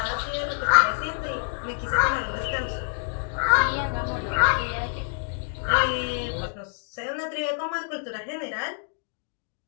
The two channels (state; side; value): silent; right; digital silence